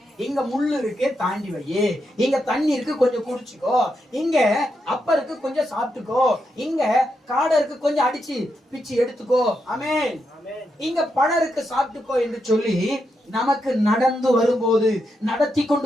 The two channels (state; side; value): normal; both; correlation 0.83